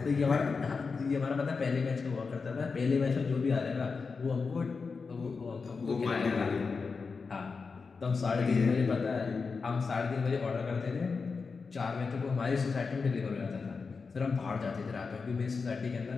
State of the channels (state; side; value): quieter; right; 4.8 dB